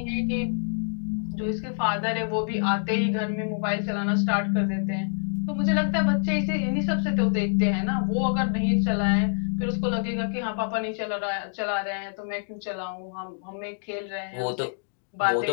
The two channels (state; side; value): silent; right; digital silence